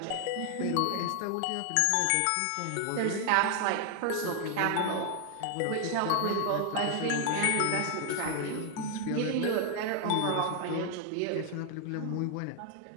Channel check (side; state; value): both; different; correlation 0.00